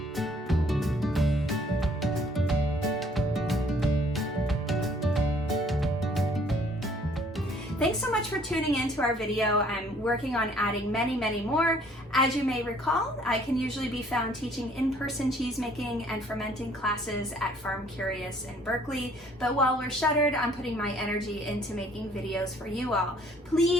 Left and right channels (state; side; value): normal; both; correlation 0.60